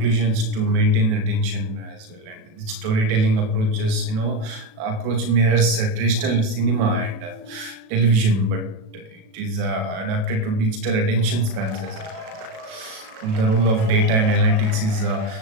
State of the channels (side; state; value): left; late; 37 ms